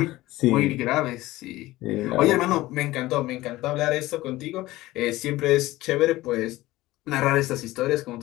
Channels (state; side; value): quieter; right; 17.8 dB